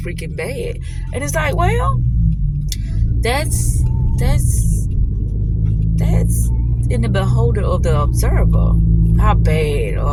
freaking bad. And it's like, well, that's in the beholder of the observer, how bad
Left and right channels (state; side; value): identical; both; correlation 1.00